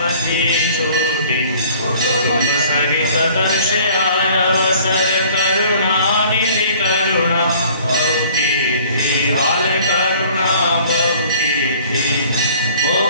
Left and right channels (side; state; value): both; inverted; correlation -0.52